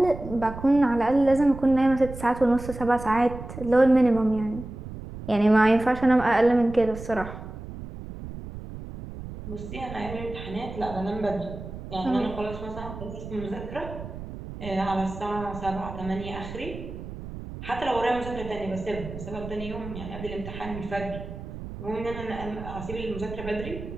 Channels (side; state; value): right; noise; rumble, 11 dB below the sound